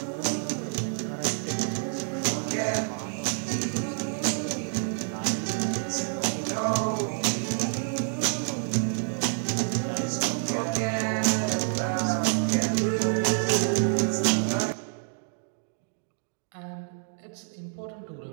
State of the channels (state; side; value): silent; left; digital silence